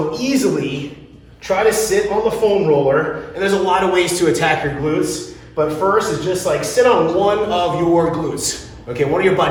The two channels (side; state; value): both; identical; correlation 1.00